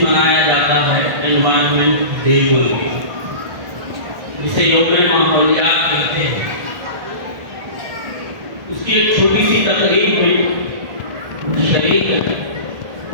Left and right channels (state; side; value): late; left; 1.5 ms